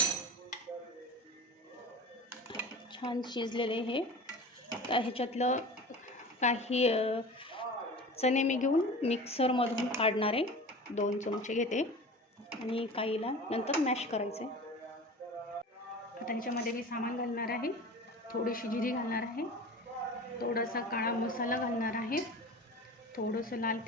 छान शिजलेले हे. आता ह्याच्यातलं काही चणे मी घेऊन मिक्सरमधून काढणार आहे. 2 चमचे घेते आणि काहीला नंतर मॅश करायचे. आता ह्याच्यामध्ये मी सामान घालणार आहे. थोडीशी जिरी घालणार आहे, थोडासा काळा मसाला घालणार आहे, थोडंसं लाल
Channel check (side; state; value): both; normal; correlation 0.36